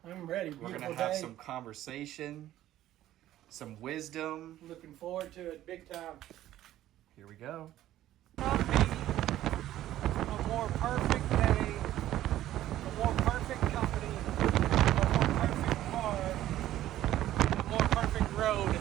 I'm ready. We're Beautiful gonna have day. some conversation, some wisdom. Looking forward to it big time. Here we go. Not be a more perfect day, a more perfect company, a more perfect car, and a more perfect road.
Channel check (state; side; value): quieter; left; 13.5 dB